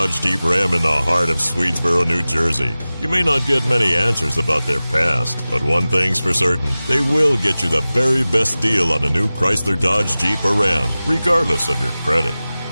Jeep Ram in the heart of Swedesboro, New Jersey. You may not get many answers about their past, but one thing's for certain, they will get you the very best deal on a new Chrysler Dodge Jeep or Ram, regardless of your credit.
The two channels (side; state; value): both; inverted; correlation -0.97